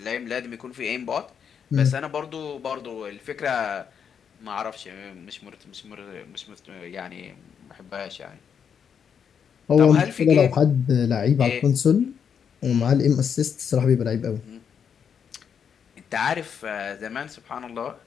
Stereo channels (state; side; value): quieter; right; 7.4 dB